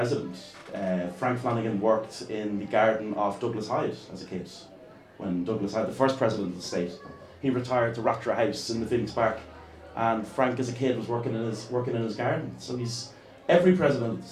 Frank Flanagan worked in the garden of Douglas Hyde as a kid. When Douglas Hyde, the first president of the state, he retired to Rattray House in the Phoenix Park, and Frank as a kid was working in his garden. So he's every president of the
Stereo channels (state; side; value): identical; both; correlation 1.00